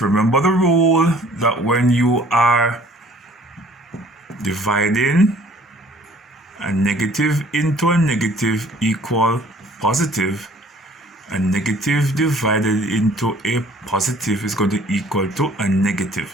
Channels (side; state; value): both; normal; correlation 0.55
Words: Remember the rule that when you are dividing a negative into a negative equal positive, a negative divided into a positive is going to equal to a